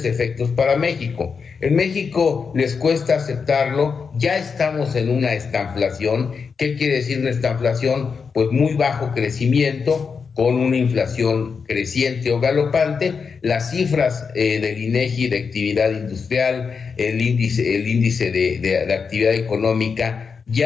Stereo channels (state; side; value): quieter; right; 5.6 dB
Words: efectos para México. En México les cuesta aceptarlo, ya estamos en una estanflación. ¿Qué quiere decir una estanflación? Pues muy bajo crecimiento, con una inflación creciente o galopante. Las cifras del INEGI de actividad industrial, el índice de actividad económica,